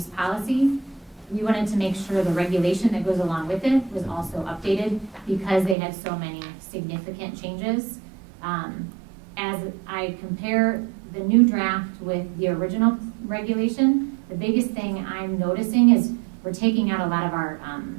Policy, we wanted to make sure the regulation that goes along with it was also updated because they had so many significant changes. As I compare the new draft with the original regulation, the biggest thing I'm noticing is we're taking out a lot of our,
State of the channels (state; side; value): drops out; left; at 5.8 s